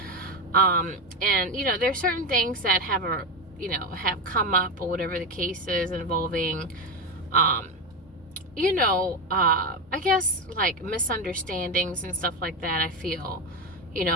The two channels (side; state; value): both; normal; correlation 0.13